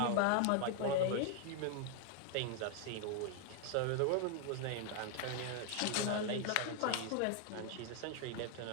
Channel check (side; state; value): both; different; correlation 0.00